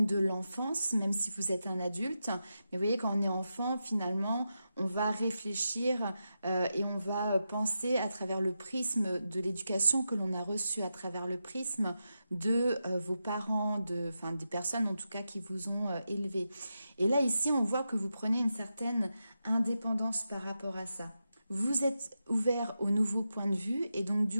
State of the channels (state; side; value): inverted; both; correlation -0.88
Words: de l'enfance, même si vous êtes un adulte. Mais vous voyez, quand on est enfant, finalement, on va réfléchir et on va penser à travers le prisme de l'éducation que l'on a reçue, à travers le prisme de vos parents, des personnes en tout cas qui vous ont élevé. Et là, ici, on voit que vous prenez une certaine indépendance par rapport à ça. Vous êtes ouvert aux nouveaux points de vue et donc